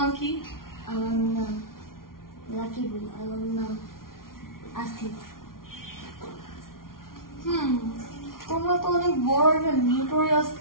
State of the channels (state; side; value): late; right; 0.92 ms